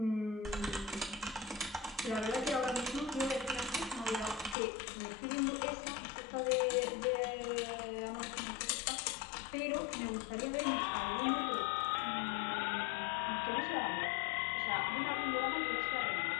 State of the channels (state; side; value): drops out; right; at 4.5 s